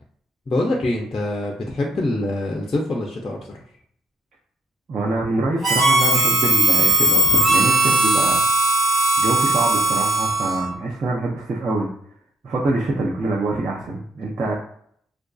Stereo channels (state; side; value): normal; both; correlation 0.73